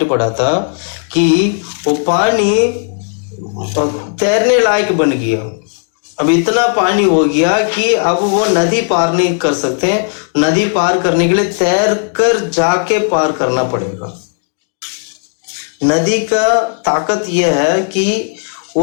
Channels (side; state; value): right; silent; 62 dB below the other